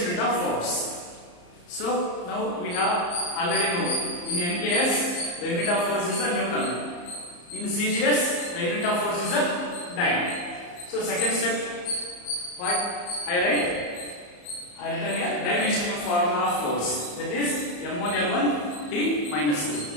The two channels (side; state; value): right; late; 34 ms